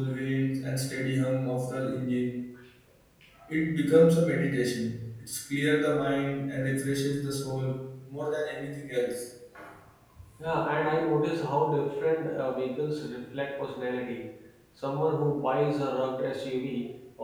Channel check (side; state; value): both; identical; correlation 1.00